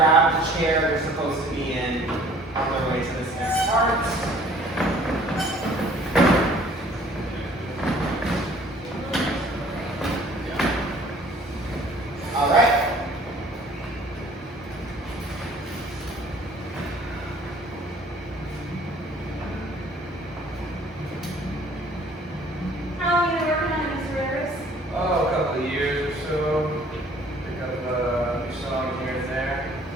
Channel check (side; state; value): both; normal; correlation 0.54